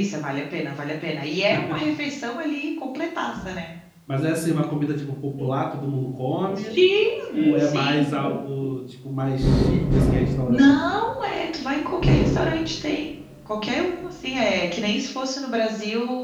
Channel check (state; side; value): identical; both; correlation 1.00